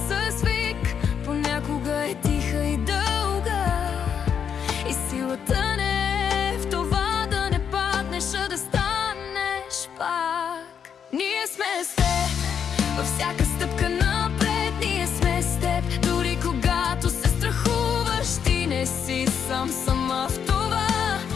вик, понякога е тиха и дълга, и силата не е в това да не паднеш, а да станеш пак. Ние сме с теб във всяка стъпка напред, ние сме с теб дори когато се страхуваш. Ти не си сама в това,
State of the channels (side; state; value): right; quieter; 7.6 dB